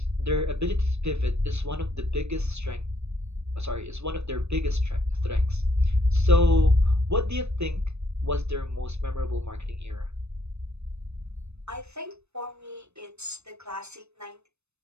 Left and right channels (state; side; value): late; left; 0.81 ms